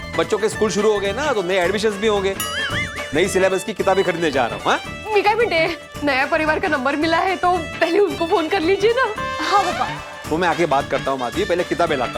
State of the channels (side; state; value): both; identical; correlation 1.00